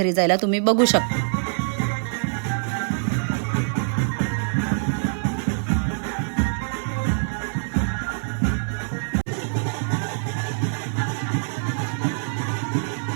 जायला, तुम्ही बघू शकता.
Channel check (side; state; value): left; silent; 60 dB below the other